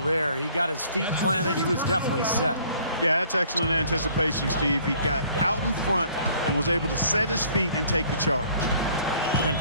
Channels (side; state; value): both; inverted; correlation -0.57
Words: there. He got his feet planted. He was definitely set. Yeah, that's excellent anticipation, Steve. He got out in front and was able to set his feet and take the charge. And